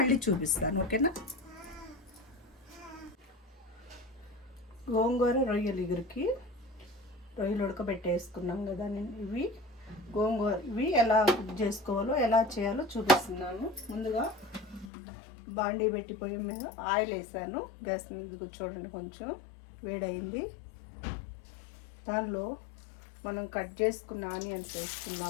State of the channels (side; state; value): right; drops out; at 14.9 s